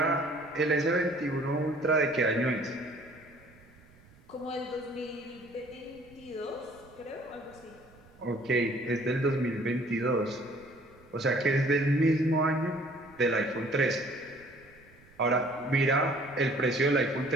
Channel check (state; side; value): noise; right; rumble, 26 dB below the sound